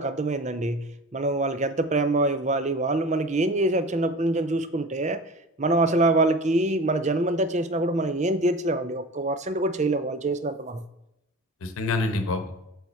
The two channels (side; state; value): both; normal; correlation 0.36